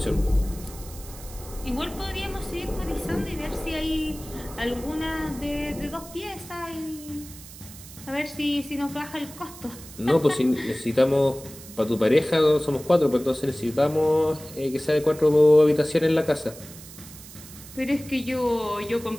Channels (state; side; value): noise; right; hiss, 17 dB below the sound